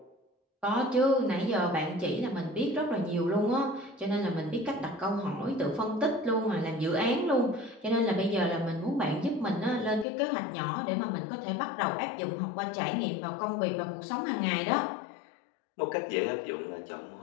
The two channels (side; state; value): right; drops out; at 10.1 s